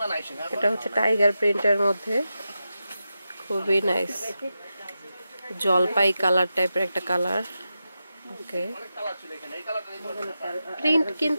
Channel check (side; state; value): both; inverted; correlation -0.90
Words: এটা হচ্ছে টাইগার প্রিন্টের মধ্যে, খুবই নাইস। জলপাই কালার টাইপের একটা কালার। ওকে, প্রিন্ট